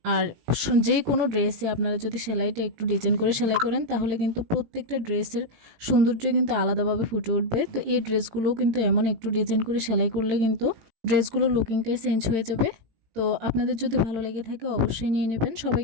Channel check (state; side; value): late; left; 18 ms